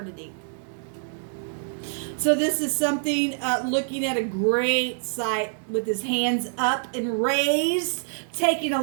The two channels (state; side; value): silent; left; digital silence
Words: So this is something, looking at a great sight with his hands up and raised, taking a